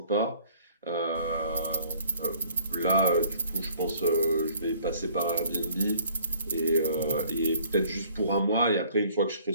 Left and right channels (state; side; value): inverted; both; correlation -0.58